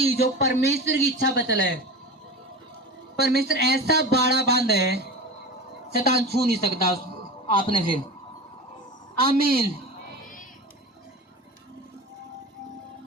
जो परमेश्वर की इच्छा पर चला है, परमेश्वर ऐसा बाड़ा बांध है, शैतान छू नहीं सकता आपने फिर। आमीन।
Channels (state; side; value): normal; both; correlation 0.30